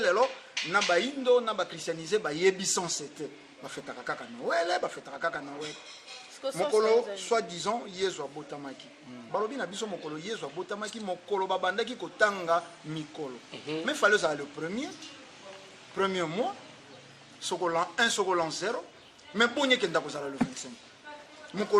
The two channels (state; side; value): identical; both; correlation 1.00